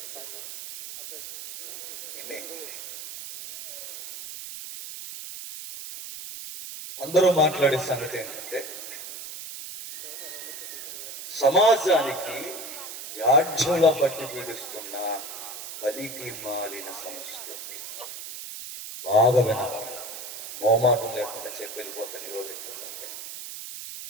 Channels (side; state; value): right; noise; hiss, 10 dB below the sound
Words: ఇన్ని అందరూ మాట్లాడే సంగతి ఏంటంటే సమాజానికి జాడ్యంలో పట్టి పీడిస్తున్న పలికి మాలిన సంస్కృతి. బాగా వినాలి. మోమాటం లేకుండా చెప్పి వెళ్ళిపోతాను. ఈరోజు ఎక్కడంటే